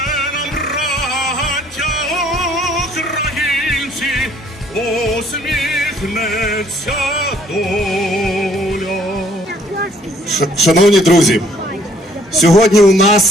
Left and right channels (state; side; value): normal; both; correlation 0.62